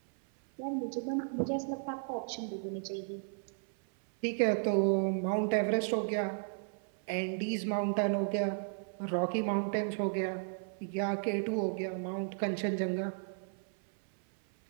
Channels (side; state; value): left; silent; 55 dB below the other